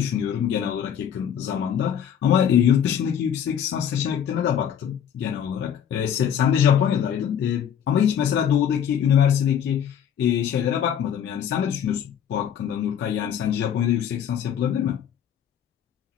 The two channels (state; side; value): quieter; right; 8.9 dB